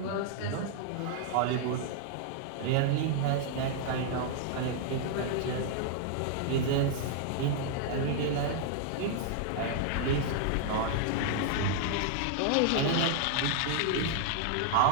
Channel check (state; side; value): different; both; correlation -0.01